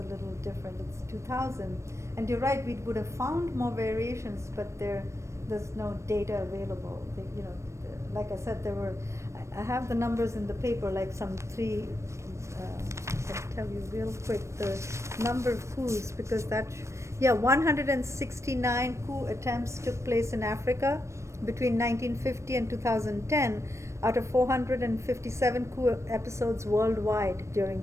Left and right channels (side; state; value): left; late; 0.14 ms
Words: little different. It's 2000, and you're right. We would have found more variations, but there's no data available. Like I said, there were. I have the numbers in the paper, like some three. I can tell you real quick the number of coups, because that Yeah, 169 coup attempts took place in Africa between 1950 and 2010 out of 457 coup episodes worldwide during